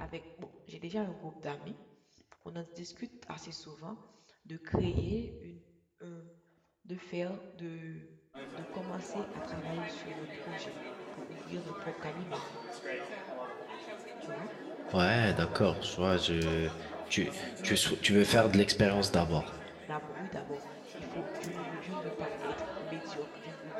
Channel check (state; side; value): identical; both; correlation 1.00